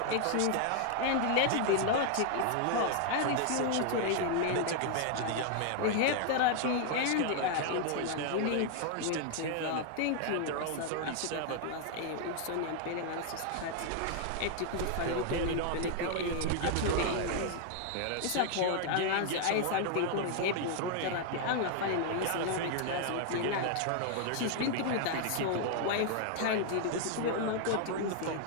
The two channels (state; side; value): different; both; correlation 0.00